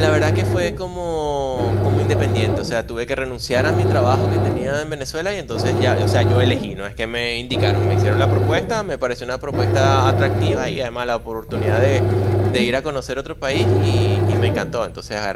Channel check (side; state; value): both; identical; correlation 1.00